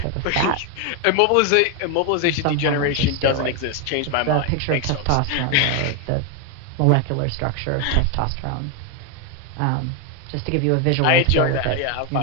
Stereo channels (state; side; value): different; both; correlation 0.01